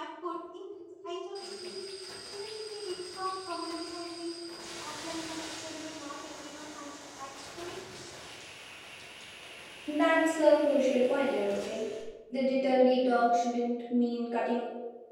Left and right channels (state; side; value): identical; both; correlation 1.00